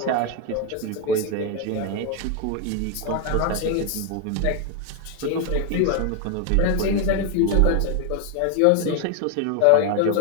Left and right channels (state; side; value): different; both; correlation 0.01